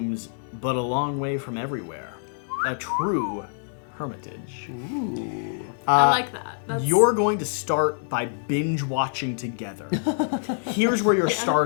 but a long way from everywhere. A true hermitage. I like that. That's... You're going to start by binge-watching together. Here's where you're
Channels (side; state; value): right; silent; digital silence